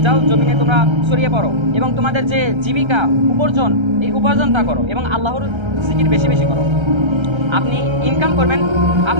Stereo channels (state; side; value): late; left; 1.3 ms